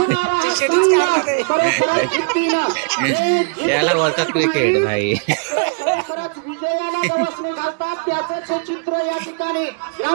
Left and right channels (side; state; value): left; quieter; 39.2 dB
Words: याला बोलतात क्रिकेट भाई. विजयाला गवसणी घालतात त्याचं चित्र या ठिकाणी